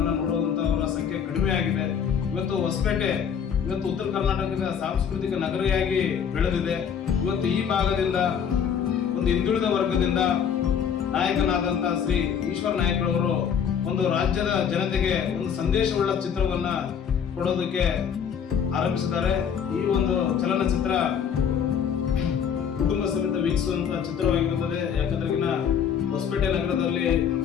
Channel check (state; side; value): quieter; right; 7.7 dB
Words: ನೋಡುವಂತವರ ಸಂಖ್ಯೆ ಕಡಿಮೆ ಆಗಿದೆ. ಇವತ್ತು ಹೊಸಪೇಟೆ ಉತ್ತರ ಕರ್ನಾಟಕದ ಸಾಂಸ್ಕೃತಿಕ ನಗರಿಯಾಗಿ ಬೆಳೆದಿದೆ. ಇವತ್ತು ಈ ಭಾಗದಿಂದ ಒಂದು ಹಿಂದುಳಿದ ವರ್ಗದಿಂದ ನಾಯಕನಾದಂತ ಶ್ರೀ ಈಶ್ವರ ನಾಯಕ್ ಅವರು ಒಂದು ರಾಜ್ಯದ ಜನತೆಗೆ ಒಂದು ಸಂದೇಶವುಳ್ಳ ಚಿತ್ರವನ್ನ ಕೊಡೋದಕ್ಕೆ ಆರಂಭಿಸಿದ್ದಾರೆ. ಈ ಒಂದು ಚಲನಚಿತ್ರ ಕುಟುಂಬ ಸಮೇತ ವೀಕ್ಷಿಸುವಂತಹ ಚಿತ್ರವಾಗಿರುತ್ತದೆ. ಯಾಕಂದ್ರೆ ಹೊಸಪೇಟೆ ನಗರದಲ್ಲಿ